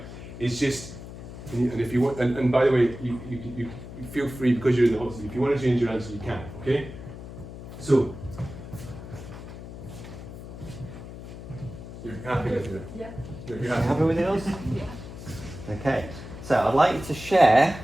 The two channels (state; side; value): noise; left; hum, 12 dB below the sound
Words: is just. And if you want, and by the way, you feel free, because you're in the hot seat. If you want to change your answer, you can. Okay. So. You're happy with it? Yeah. You're Happy happy. with yours? Yeah. Okay. So I'd like you to share.